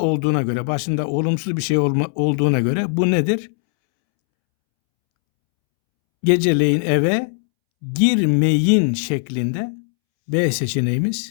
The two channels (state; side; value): silent; right; 66 dB below the other